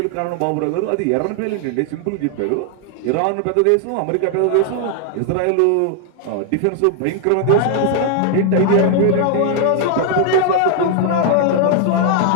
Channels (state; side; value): different; both; correlation 0.00